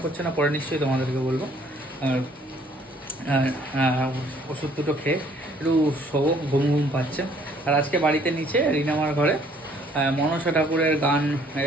পড়ছে না, পরে নিশ্চয়ই তোমাদেরকে বলবো। আর ওষুধ দুটো খেয়ে একটু শোবো, ঘুম পাচ্ছে। আর আজকে বাড়িতে নিচে রিনামার ঘরে মনসা ঠাকুরের গান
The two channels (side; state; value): both; normal; correlation 0.61